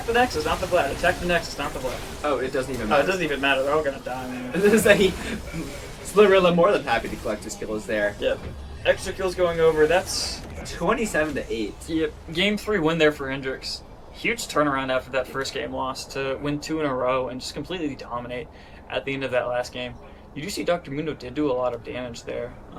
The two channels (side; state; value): both; identical; correlation 1.00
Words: the Nexus, not the Vlad. Attack the Nexus, not the Vlad. Oh, it doesn't even Oh, matter. it doesn't even matter. They're all gonna die, man. This is a Slurilla more than happy to collect his kills there. Yep. Extra kills going over. That's 27-8. yep. Game 3 win there for Hendrix. Huge turnaround after that first game loss to win 2 in a row and just completely dominate at the end of that last game. You do see Dr. Mundo did do a lot of damage there,